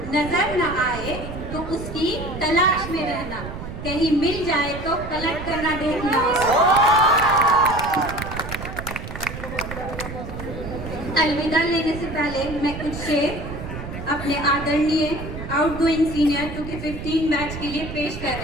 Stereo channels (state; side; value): noise; right; rumble, 9 dB below the sound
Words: नजर न आए तो उसकी तलाश में रहना, कहीं मिल जाए तो पलट कर ना देखना उसको। अलविदा लेने से पहले मैं कुछ शेर अपने आदरणीय आउटगोइंग सीनियर 2K15 बैच के लिए पेश कर